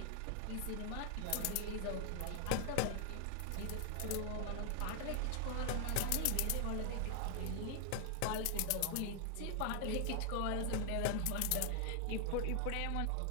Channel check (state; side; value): different; both; correlation 0.00